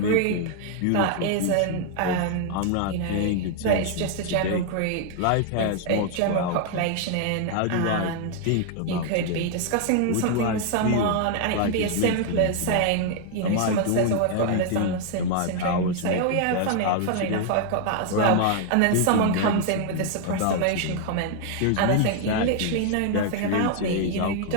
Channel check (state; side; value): different; both; correlation 0.00